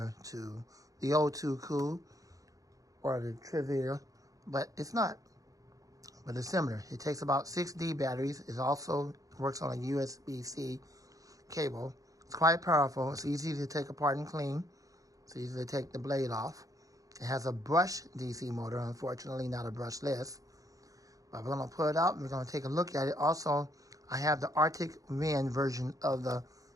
to the O2 Cool or the Trivia, but it's not. But it's similar. It takes about 6D batteries. It also works on a USB-C cable. It's quite powerful. It's easy to take apart and clean. It's easy to take the blade off. It has a brush DC motor, unfortunately not a brushless. But we're going to pull it out and we're going to take a look at it. Also, I have the Arctic Wind version of the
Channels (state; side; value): late; left; 0.17 ms